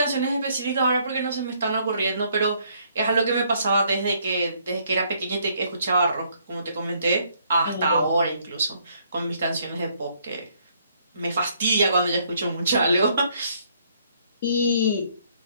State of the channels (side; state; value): both; inverted; correlation -0.67